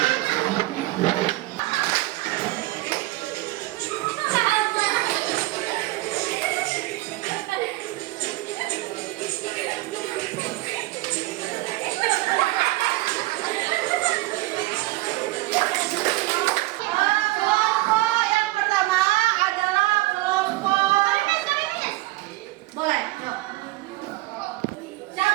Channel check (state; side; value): quieter; left; 19.6 dB